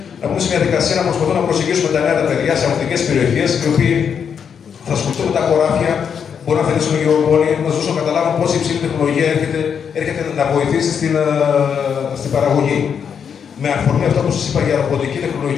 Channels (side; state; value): right; quieter; 7.3 dB